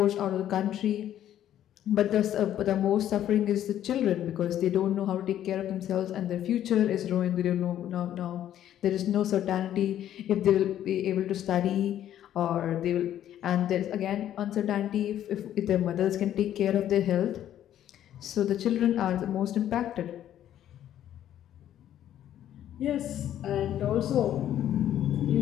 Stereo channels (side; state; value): right; quieter; 11.4 dB